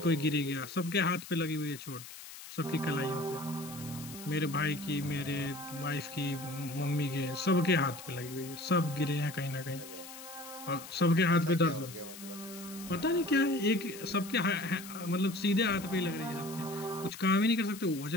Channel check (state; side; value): noise; left; hiss, 14 dB below the sound